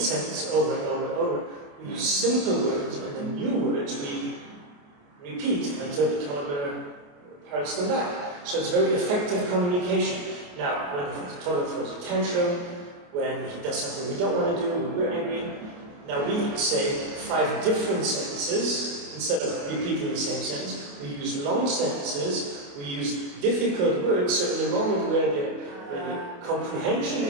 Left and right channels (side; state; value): left; late; 28 ms